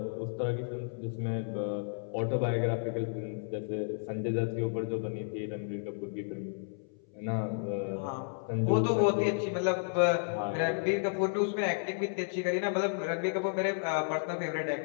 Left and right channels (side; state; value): right; silent; 56 dB below the other